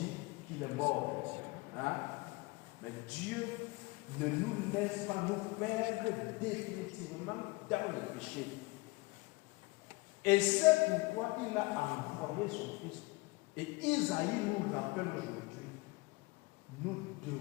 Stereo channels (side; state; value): right; quieter; 24.8 dB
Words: qu'il est mort. Hein? Mais Dieu ne nous laisse pas nous perdre définitivement dans le péché. Et c'est pourquoi il a envoyé son Fils. Et Isaïe nous rappelle aujourd'hui, nous